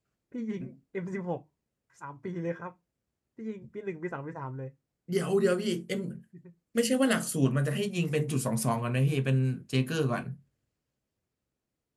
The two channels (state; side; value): identical; both; correlation 1.00